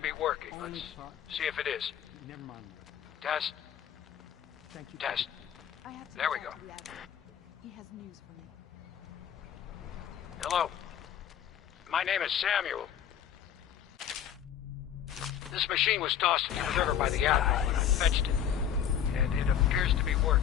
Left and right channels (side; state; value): right; quieter; 9.5 dB